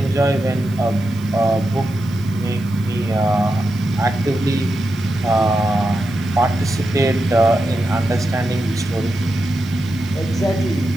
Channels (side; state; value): right; noise; hiss, 24 dB below the sound